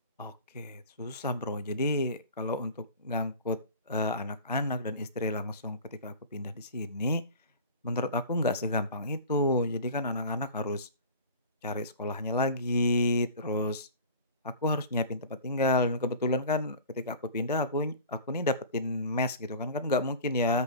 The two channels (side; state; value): both; inverted; correlation -0.39